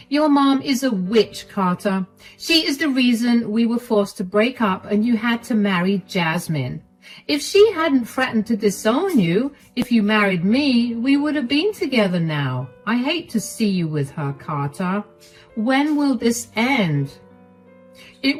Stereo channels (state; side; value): identical; both; correlation 1.00